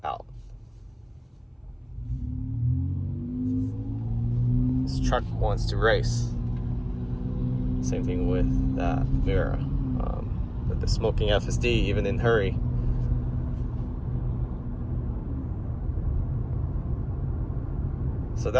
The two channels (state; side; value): identical; both; correlation 1.00